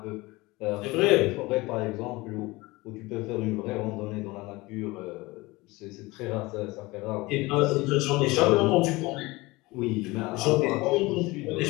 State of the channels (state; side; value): quieter; right; 22.0 dB